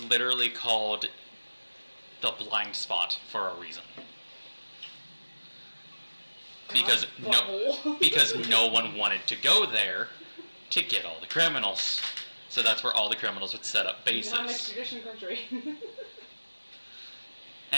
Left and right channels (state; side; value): inverted; both; correlation -1.00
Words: literally called the blind spot for a reason. Because no one wanted to go there to get all the criminals. So that's where all the criminals would set up bases. Non-extradition country.